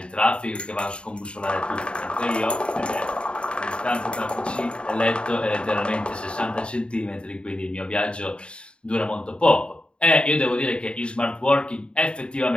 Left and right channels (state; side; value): late; right; 0.054 ms